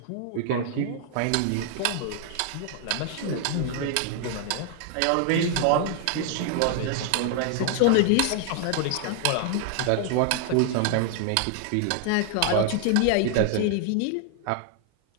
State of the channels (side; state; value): both; different; correlation 0.00